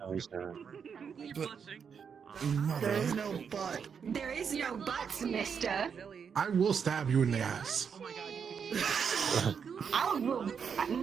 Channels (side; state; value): left; quieter; 6.7 dB